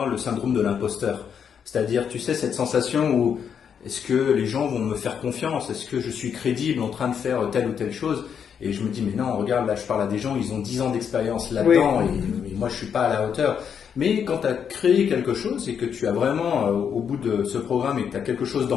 le syndrome de l'imposteur. C'est-à-dire, tu sais, cette sensation où est-ce que les gens vont me faire confiance? Est-ce que je suis crédible en train de faire telle ou telle chose? Et je me dis, mais non, regarde, là je parle à des gens, ils ont 10 ans d'expérience là-dedans et moi je suis pas à la hauteur. Mais quand tu as créé quelque chose et que tu as vraiment, au bout de ce programme, et que tu as quelque chose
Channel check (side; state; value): right; quieter; 7.6 dB